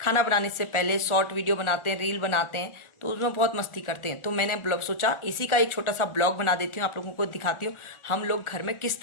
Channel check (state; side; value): late; right; 1.4 ms